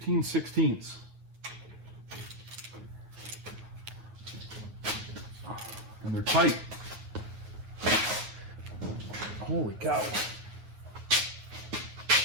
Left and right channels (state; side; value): late; left; 9.5 ms